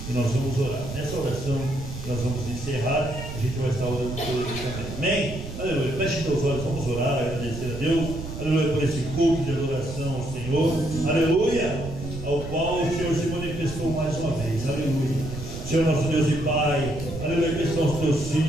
E nós vamos orar. Nessa oração, nós vamos encerrar. A gente vai estar orando por ele também. Amém? Aleluia. Feche seus olhos, vamos orar, agradecer a Deus. Aleluia, por esse culto de adoração ao Senhor. Aleluia, ao qual o Senhor se manifestou mais uma vez. Aleluia. Senhor nosso Deus e Pai. Aleluia, que estão os teus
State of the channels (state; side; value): noise; right; rumble, 9 dB below the sound